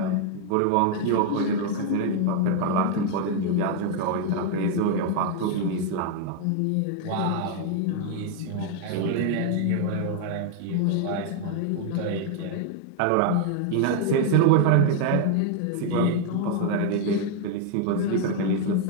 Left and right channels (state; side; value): different; both; correlation 0.00